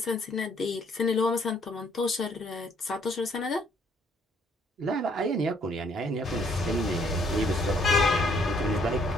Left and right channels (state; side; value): normal; both; correlation 0.65